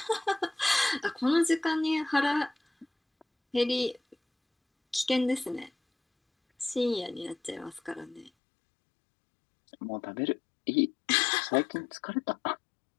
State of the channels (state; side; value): drops out; right; at 8.3 s